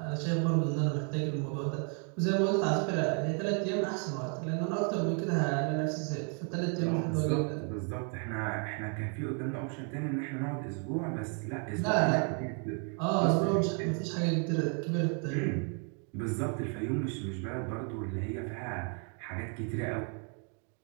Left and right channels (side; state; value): left; quieter; 40.0 dB